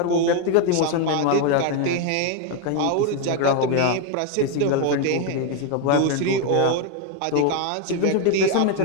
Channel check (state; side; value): different; both; correlation 0.01